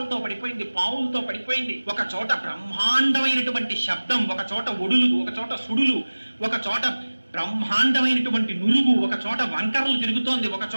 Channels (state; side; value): inverted; both; correlation -1.00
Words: పడిపోయింది, పావులతో పడిపోయింది. ఒక చోట బ్రహ్మాండమైనటువంటి శబ్దం, ఒక చోట ఒడులు, ఒక చోట సుడులు, ఒక చోట బ్రహ్మాండమైనటువంటి నురుగు, ఒక చోట వంకరలు తిరుగుతోంది, ఒక